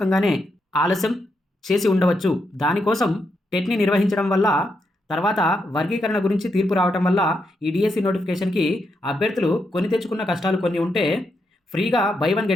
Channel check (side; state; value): both; normal; correlation 0.81